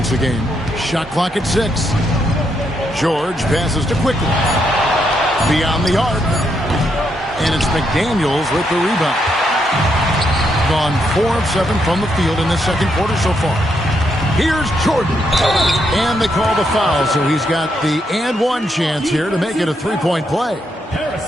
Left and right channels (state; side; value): normal; both; correlation 0.78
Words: a game. Shot clock at 6. George passes to Quickly. Beyond the arc. And it's McDaniels with the rebound. Gone 4 of 7 from the field in the second quarter so far. Here's Jordan. And they call the foul, so he's got the and one chance here to make it a 3-point play.